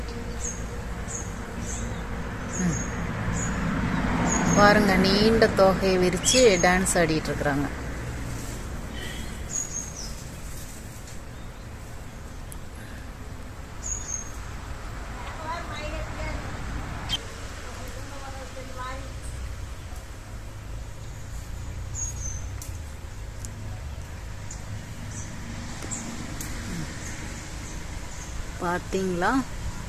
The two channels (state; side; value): identical; both; correlation 1.00